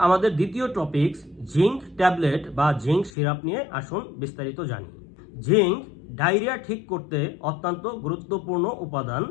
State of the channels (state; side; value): drops out; right; at 3.1 s